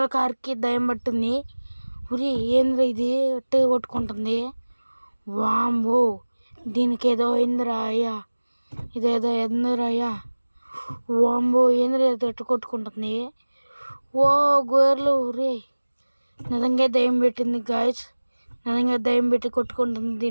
కారుకి దయ్యం పట్టింది. ఉరి ఏంద్ర ఇది అట్టే కొట్టుకుంటుంది. వాంబో, దీనికి ఏదో అయిందిరా అయ్యా, ఇదేదో ఎందిరా అయ్యా. వాంబో, ఏంద్ర ఎట్టు కొట్టుకుంటుంది. ఓ గోర్లు, ఉరి నిజంగా దయ్యం పెట్టింది గాయ్స్. నిజంగా దయ్యం పెట్టి కొట్టుకుంటుంది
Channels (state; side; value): inverted; both; correlation -1.00